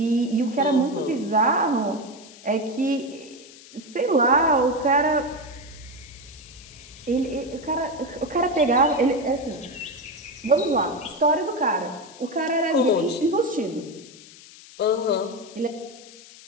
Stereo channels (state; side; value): noise; left; hiss, 20 dB below the sound